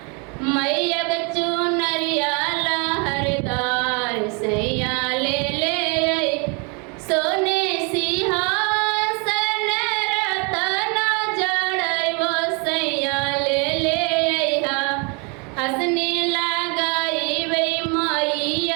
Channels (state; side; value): quieter; left; 33.5 dB